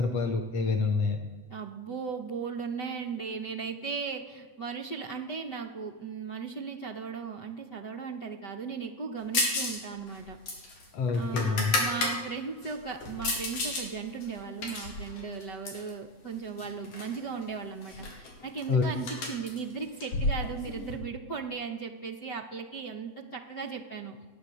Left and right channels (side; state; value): right; late; 7.9 ms